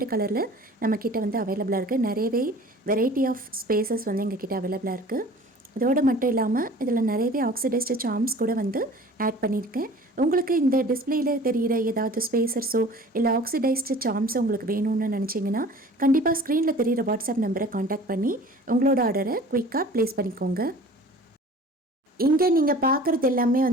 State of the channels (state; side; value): normal; both; correlation 0.45